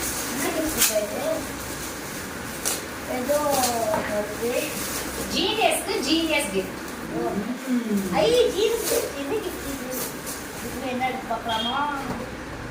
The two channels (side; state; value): both; identical; correlation 1.00